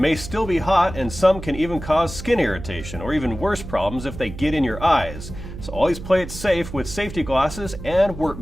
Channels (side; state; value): right; noise; hum, 11 dB below the sound